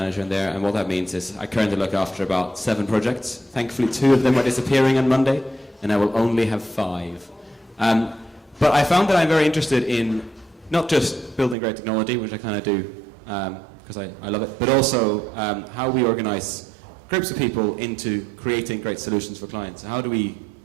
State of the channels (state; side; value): drops out; left; at 11.6 s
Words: in there. And what that means is I currently look after about 7 projects. Thankfully, 2 of them are disappearing on Monday, and I will only have 5. But I found that I'm very interested in not just building great technology, which I kind of do because I love it, but also how we organize groups of people into creating great solutions for clients. How do we